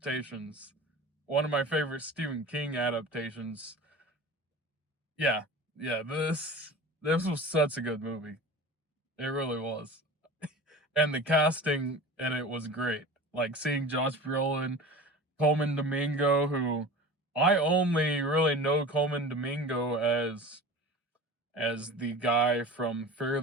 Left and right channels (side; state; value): both; normal; correlation 0.35